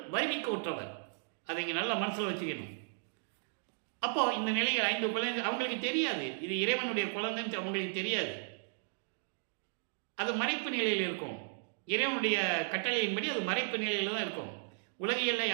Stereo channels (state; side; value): silent; left; digital silence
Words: வருவிக்க உற்றவர். அதை இங்கே நல்லா மனசில் வச்சுக்கணும். அப்போ இந்த நிலையில் 5 குழந்தை அவங்களுக்கு தெரியாது, இது இறைவனுடைய குழந்தைன்னு அவங்களுக்கு தெரியாது. அது மறைப்பு நிலையில் இருக்கும். இறைவனுடைய கட்டளையின்படி அது மறைப்பு நிலையில் தான் இருக்கும். உலகியல்ல